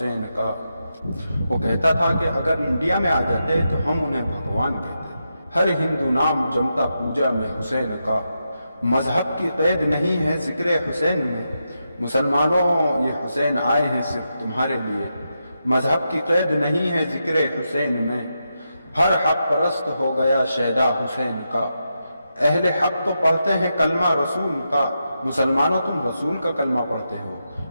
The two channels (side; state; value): both; inverted; correlation -0.86